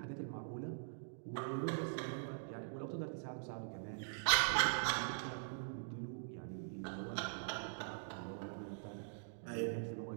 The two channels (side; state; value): left; silent; digital silence